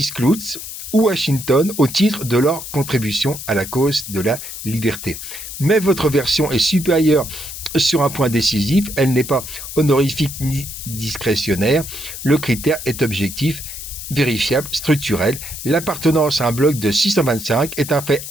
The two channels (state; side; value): noise; left; hiss, 10 dB below the sound